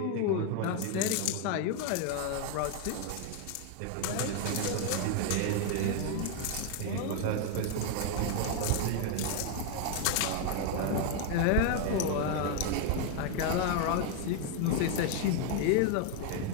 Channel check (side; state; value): both; different; correlation 0.01